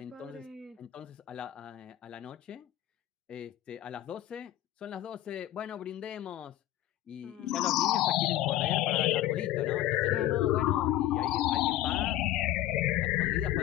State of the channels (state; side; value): quieter; right; 13.9 dB